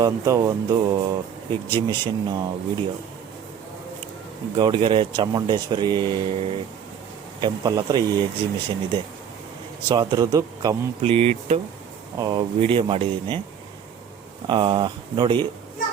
ಒಂದು exhibition video. Gowdagere Chamundeshwari temple ಹತ್ರ ಈ ಎಕ್ಸಿಬಿಷನ್ ಇದೆ. ಸೊ ಅದರದ್ದು ಕಂಪ್ಲೀಟು ವಿಡಿಯೋ ಮಾಡಿದ್ದೀನಿ, ನೋಡಿ.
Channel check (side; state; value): left; quieter; 8.1 dB